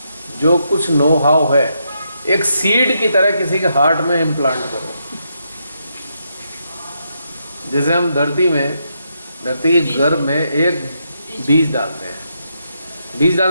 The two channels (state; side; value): inverted; both; correlation -0.80